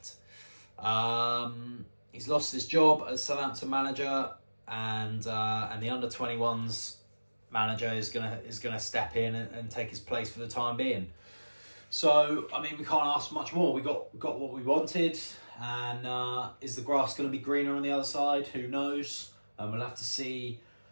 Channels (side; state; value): both; inverted; correlation -1.00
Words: He's lost his job as Southampton manager, and the under-21s manager is gonna step in and take his place for the time being. So, I mean, we can't ask much more. We got what we wanted, and is the grass going to be greener on the other side? Who knows? We'll have to see.